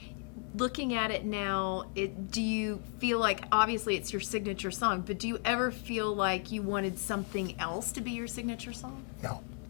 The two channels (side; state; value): right; quieter; 39.3 dB